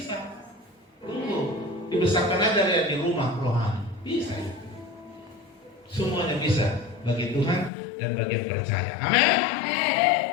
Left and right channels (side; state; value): right; drops out; at 7.7 s